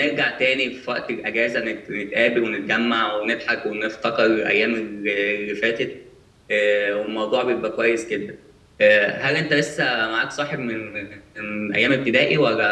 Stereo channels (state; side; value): identical; both; correlation 1.00